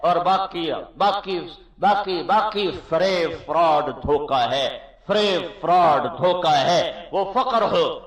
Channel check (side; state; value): both; identical; correlation 1.00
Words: اور باقی فریب فراڈ دھوکہ ہے، فریب فراڈ دھوکہ ہے۔ وہ فقر ہو،